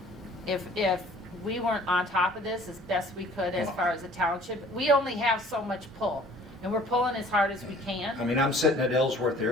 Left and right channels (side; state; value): both; normal; correlation 0.52